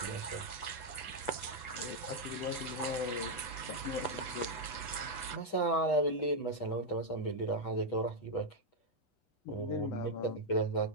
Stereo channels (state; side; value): late; right; 8.0 ms